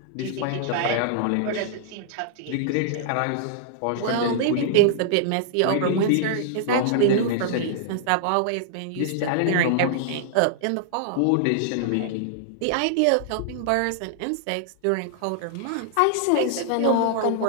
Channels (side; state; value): both; different; correlation -0.01